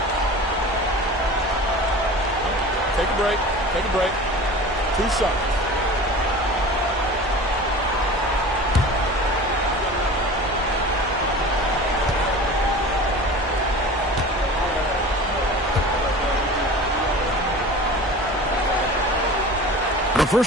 Take a break. Take a break. 2 shots. The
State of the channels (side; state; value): both; normal; correlation 0.37